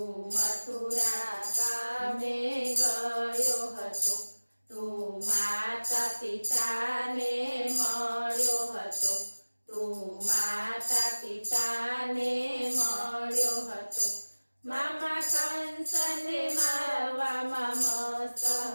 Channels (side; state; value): both; inverted; correlation -1.00